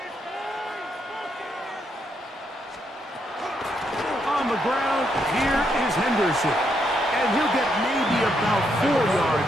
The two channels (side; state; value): both; normal; correlation 0.77